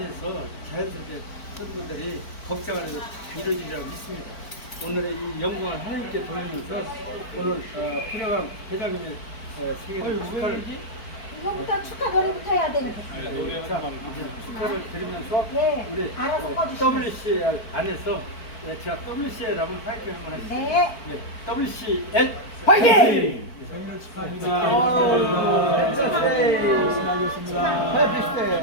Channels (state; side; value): late; right; 4.5 ms